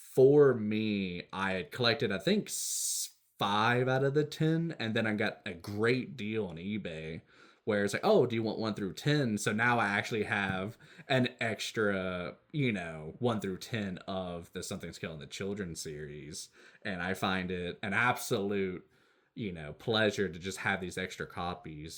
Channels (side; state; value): both; identical; correlation 1.00